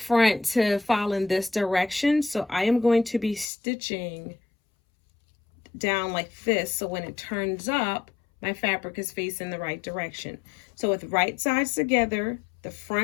to fall in this direction, so I am going to be stitching down like this, so when it turns up, my fabric is facing the right direction. So with right sides together, the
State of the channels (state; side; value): drops out; right; at 3.5 s